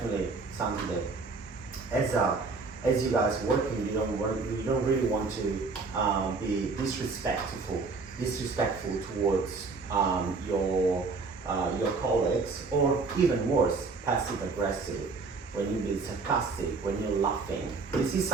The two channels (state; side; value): quieter; left; 4.2 dB